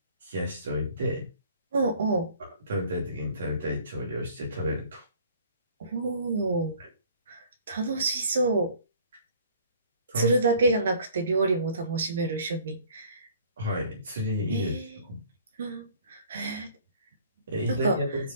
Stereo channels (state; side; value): inverted; both; correlation -0.53